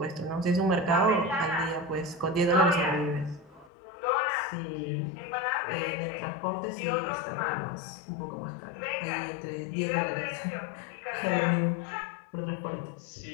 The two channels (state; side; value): drops out; right; at 3.7 s